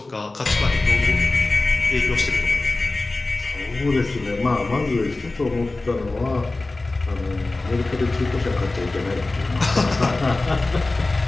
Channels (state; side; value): quieter; right; 3.2 dB